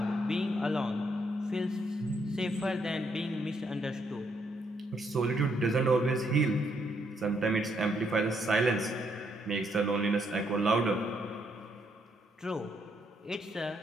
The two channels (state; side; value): normal; both; correlation 0.74